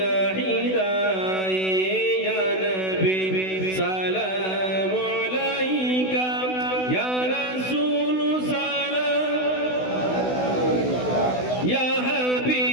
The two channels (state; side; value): late; right; 16 ms